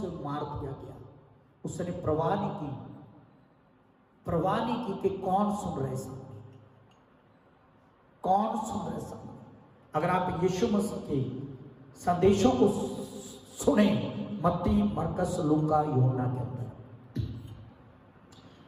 मार दिया गया। उसने परवाह नहीं की कि कौन सुन रहे सामने, कौन सुन रहे सामने। अगर आप यीशु मसीह के संदेशों को सुने, मत्ती, मरकस, लूका, यूहन्ना के अंदर,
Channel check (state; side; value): identical; both; correlation 1.00